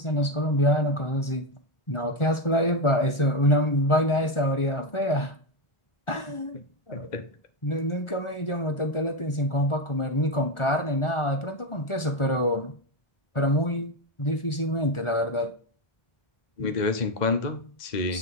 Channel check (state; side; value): late; right; 1.4 ms